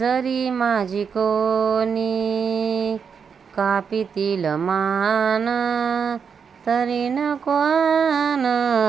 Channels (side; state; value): left; quieter; 6.5 dB